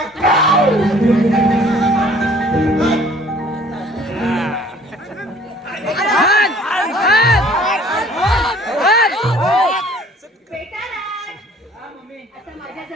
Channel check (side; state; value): both; normal; correlation 0.54